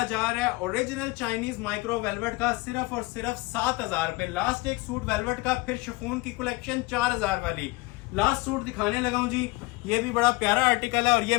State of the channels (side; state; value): right; quieter; 23.7 dB